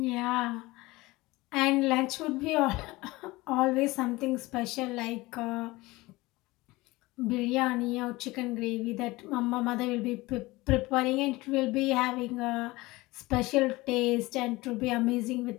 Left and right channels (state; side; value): quieter; right; 20.8 dB